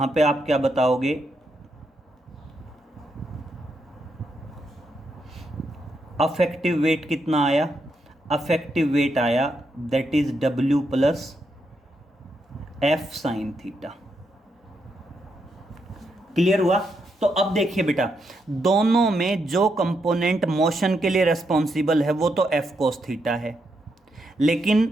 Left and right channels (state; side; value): normal; both; correlation 0.81